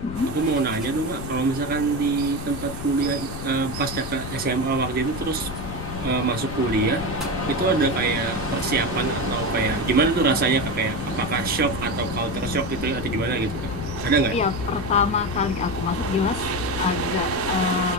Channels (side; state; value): left; noise; rumble, 9 dB below the sound